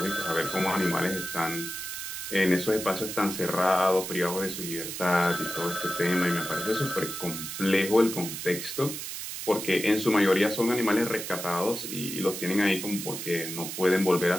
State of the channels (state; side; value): noise; right; hiss, 7 dB below the sound